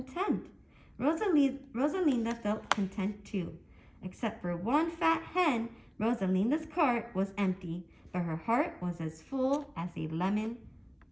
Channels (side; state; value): both; identical; correlation 1.00